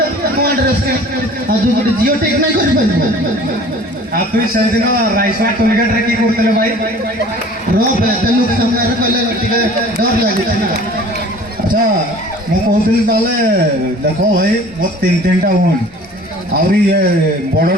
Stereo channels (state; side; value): normal; both; correlation 0.47